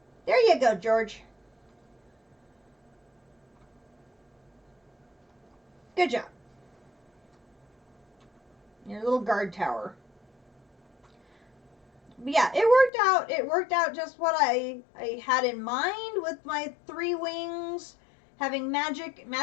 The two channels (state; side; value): drops out; right; at 12.9 s